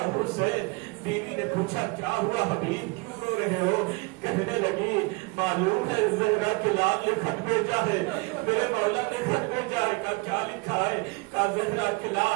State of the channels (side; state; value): left; quieter; 27.4 dB